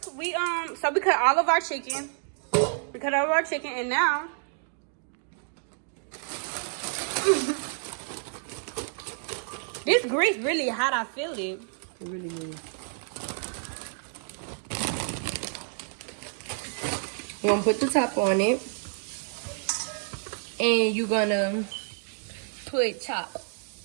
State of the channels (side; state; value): left; silent; digital silence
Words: we cut all of our chicken. We cut all of our chicken, and now this grease really hot. I feel it. It really is. You're gonna put the top on it. And you're gonna put